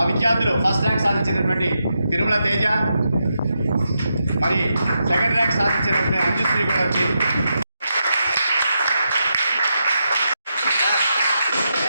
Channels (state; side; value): inverted; both; correlation -0.85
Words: విద్యార్థులు ఫస్ట్ ర్యాంక్ సాధించినటువంటి తిరుమల తేజ, మరి సెకండ్ ర్యాంక్ సాధించినటువంటి అంజుశ్రీ కూడా వచ్చి